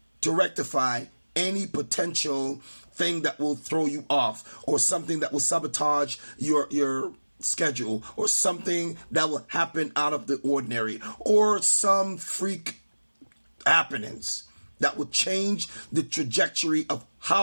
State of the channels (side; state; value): both; inverted; correlation -1.00